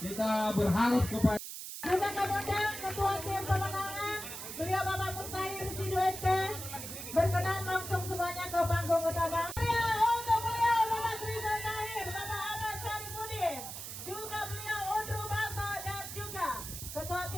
kita berharap kepada Undang-undang Ketua Tim Pemenangan, beliau Bapak Mustahil Sidoet berkenan langsung semuanya ke panggung utama. Untuk beliau Bapak Rizal Tahir, Bapak Ahmad Syarifudin, juga beliau Undru Baso dan juga Ketua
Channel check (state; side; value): noise; right; hiss, 8 dB below the sound